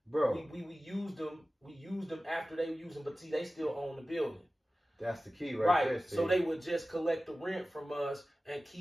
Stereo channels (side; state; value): both; normal; correlation 0.96